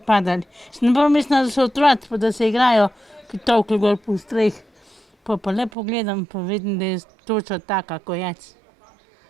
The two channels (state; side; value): drops out; left; at 5.7 s